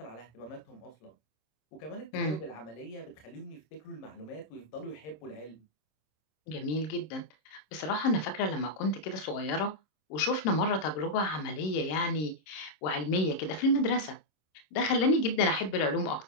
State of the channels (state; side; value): late; right; 26 ms